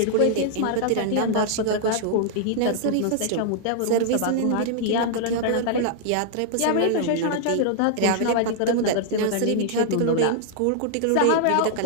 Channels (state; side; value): different; both; correlation 0.00